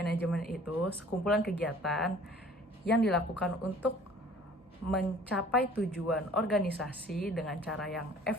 itu sekumpulan kegiatan yang dilakukan untuk mencapai tujuan organisasi dengan cara yang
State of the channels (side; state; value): both; normal; correlation 0.51